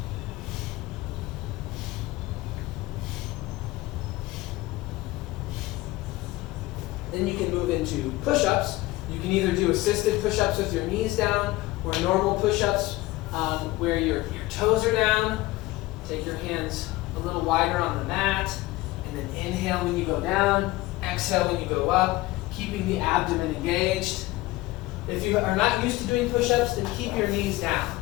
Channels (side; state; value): right; quieter; 19.0 dB